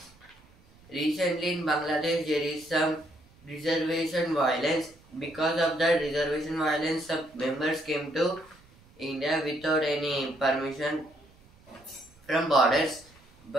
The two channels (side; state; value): right; noise; rumble, 28 dB below the sound